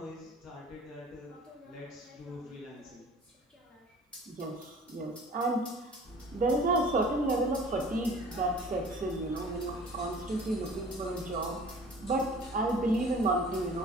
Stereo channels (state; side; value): normal; both; correlation 0.47